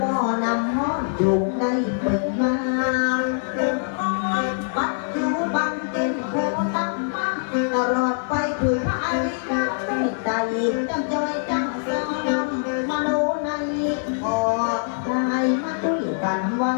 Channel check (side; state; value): right; silent; digital silence